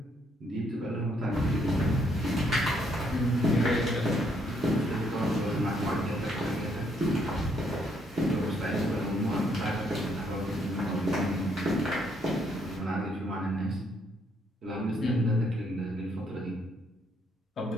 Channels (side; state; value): both; normal; correlation 0.71